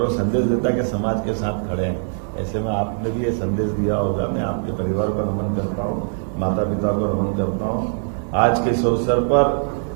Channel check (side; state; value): left; silent; digital silence